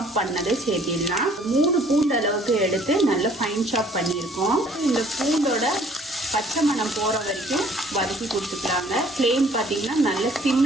பண்ணதை சேர்த்திடலாம். 3 பூண்டு அளவுக்கு எடுத்து நல்லா ஃபைன் சாப் பண்ணியிருக்கோம். இந்த பூண்டோட பச்சை மணம் போகிற வரைக்கும் வதக்கி கொடுத்துக்கலாங்க. ஃப்ளேம் பார்த்தீங்கன்னா நல்ல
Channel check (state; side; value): normal; both; correlation 0.57